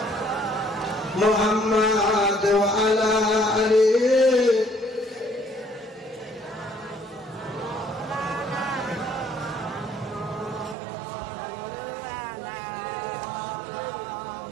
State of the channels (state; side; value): drops out; left; at 10.8 s